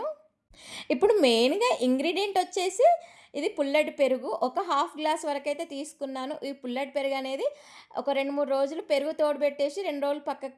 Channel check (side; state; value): both; identical; correlation 1.00